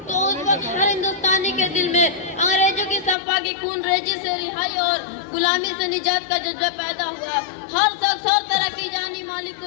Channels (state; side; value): drops out; right; at 3.2 s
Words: तो उस वक्त हर हिंदुस्तानी के दिल में अंग्रेजों की सफा की खून रेजी से रिहाई और गुलामी से निजात का जज्बा पैदा हुआ। हर शख्स हर तरह की जानी माली